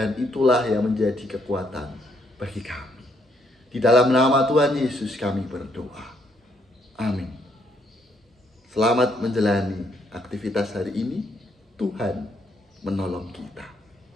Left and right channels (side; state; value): both; normal; correlation 0.72